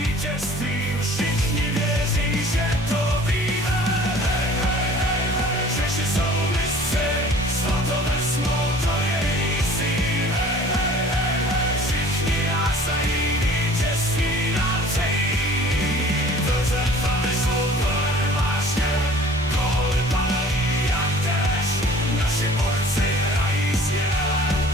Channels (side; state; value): both; normal; correlation 0.48